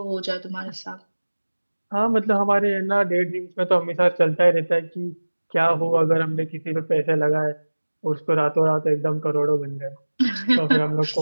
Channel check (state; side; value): inverted; both; correlation -1.00